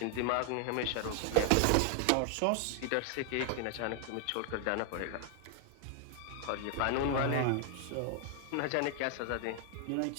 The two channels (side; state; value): both; different; correlation 0.00